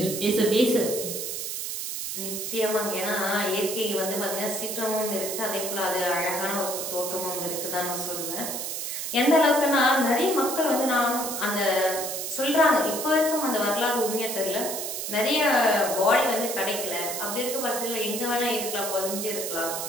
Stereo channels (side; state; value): right; noise; hiss, 4 dB below the sound